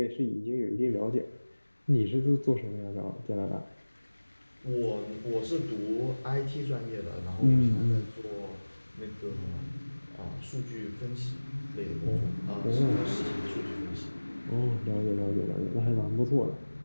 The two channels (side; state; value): both; inverted; correlation -1.00